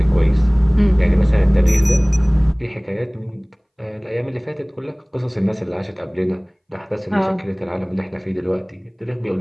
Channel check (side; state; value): both; identical; correlation 1.00